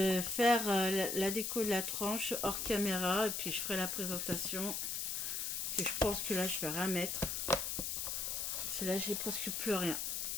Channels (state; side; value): noise; left; hiss, 2 dB below the sound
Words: faire la déco de la tranche hors caméra et puis je ferai la présentation. Parce que je pense que là je vais rien mettre. Parce que là j'ai presque plus rien.